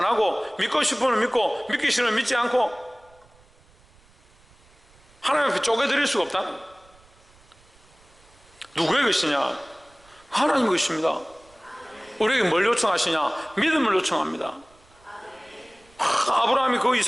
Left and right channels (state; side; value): noise; right; rumble, 29 dB below the sound